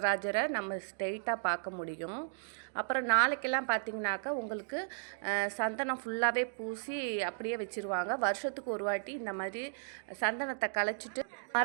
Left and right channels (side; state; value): left; silent; digital silence